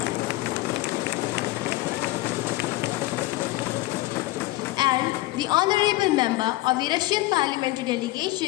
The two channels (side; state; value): right; quieter; 18.4 dB